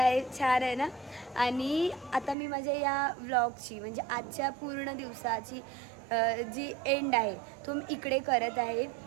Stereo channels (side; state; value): left; drops out; at 2.4 s